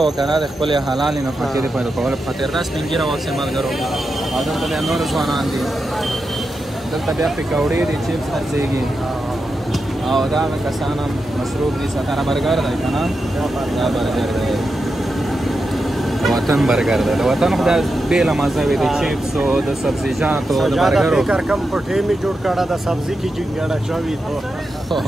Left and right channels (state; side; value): normal; both; correlation 0.88